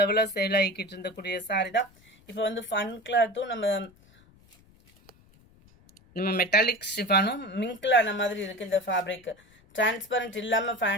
லெவலா சேல் ஆகிக்கிட்டு இருந்தக்கூடிய சாரி தான். இப்போ வந்து ஃபன் கிளாத்தும் நம்ம மெட்டாலிக் ஷிஃபானும் மிங்க்ல ஆன மாதிரி இருக்கு. இந்த ஃபேப்ரிக் டிரான்ஸ்பரண்ட் இல்லாம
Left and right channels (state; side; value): noise; left; rumble, 29 dB below the sound